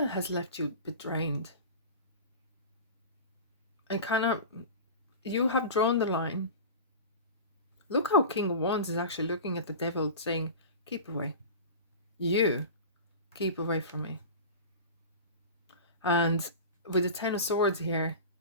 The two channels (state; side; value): inverted; both; correlation -0.32